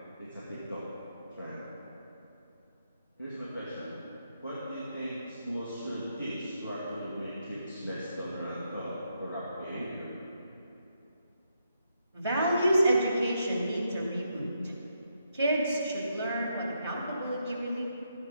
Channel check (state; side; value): inverted; both; correlation -0.80